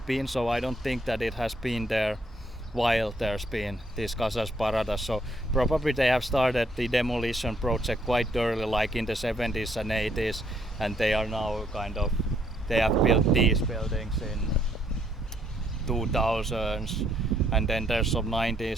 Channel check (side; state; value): both; normal; correlation 0.70